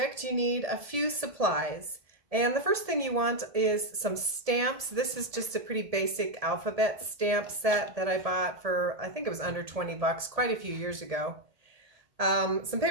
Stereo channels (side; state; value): left; late; 1.7 ms